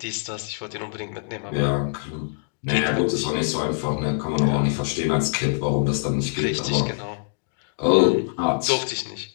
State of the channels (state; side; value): silent; right; digital silence